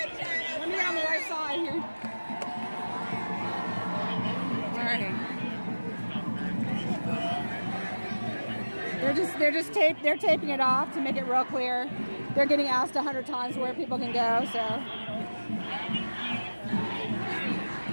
me on the right side here. All right. They're taping it off to make it real clear. They're getting asked 100 times where people can go, so.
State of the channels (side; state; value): both; inverted; correlation -1.00